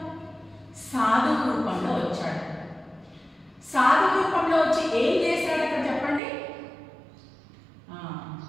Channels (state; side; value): drops out; left; at 6.2 s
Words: సాధువు రూపంలో వచ్చాడు. సాధువు రూపంలో వచ్చి ఏం చేశాడు అక్కడ చెప్పండి?